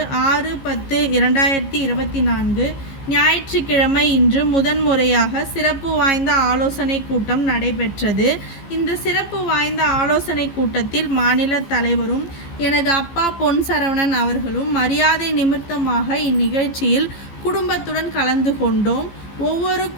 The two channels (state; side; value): late; right; 15 ms